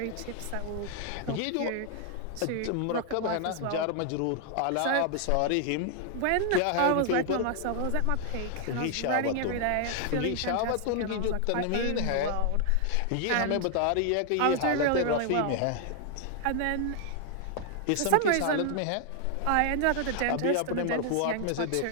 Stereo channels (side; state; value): both; different; correlation 0.00